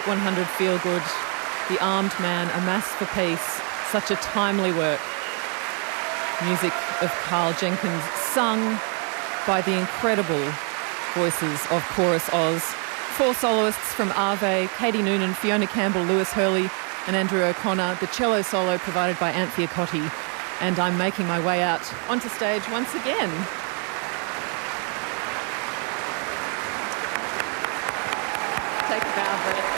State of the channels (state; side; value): quieter; left; 39.4 dB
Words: 100 Feel Good, The Armed Man, A Mass for Peace, such a timely work. Music of Carl Jenkins, sung by the incredible voices of ChorusOz. 4 soloists from Ave, Katie Noonan, Fiona Campbell, Lewis Hurley and Andrew O'Connor. The cello solo provided by Anthea Cotti. And I'm making my way out onto stage once again. Take a bow, Brett.